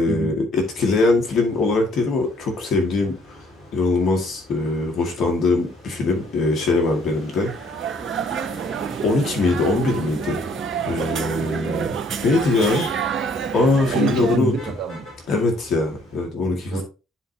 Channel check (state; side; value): normal; both; correlation 0.62